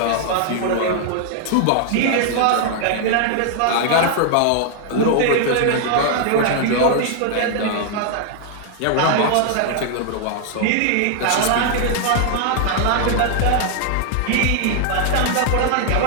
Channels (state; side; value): different; both; correlation 0.00